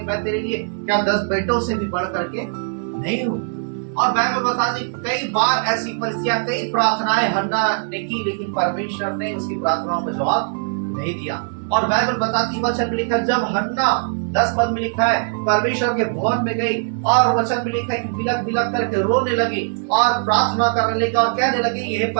मैं तेरे लिए क्या 10 बेटों से भी बढ़ करके नहीं हूँ। और बाइबल बताती कई बार ऐसी परिस्थितियां, कई प्रार्थनाएं हन्ना ने की, लेकिन परमेश्वर ने उसकी प्रार्थनाओं में जवाब नहीं दिया। और बाइबल बताती, वचन में लिखा, जब हन्ना 10 पद में लिखा है परमेश्वर के भवन में गई और वचन में लिखा है कि बिलक बिलक करके रोने लगी और प्रार्थना करने लगी और कहने लगी, ये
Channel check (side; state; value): left; silent; digital silence